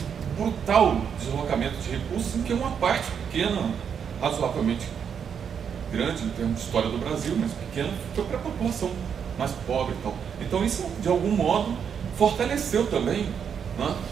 brutal deslocamento de recursos, em que uma parte pequena, razoavelmente grande em termos de história do Brasil, mas pequena, foi para a população mais pobre e tal. Então isso, de algum modo, fortaleceu também, né,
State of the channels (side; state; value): left; quieter; 7.4 dB